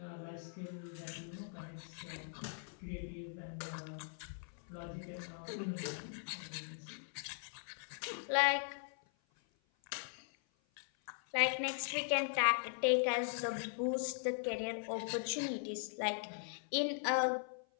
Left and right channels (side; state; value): right; silent; 51 dB below the other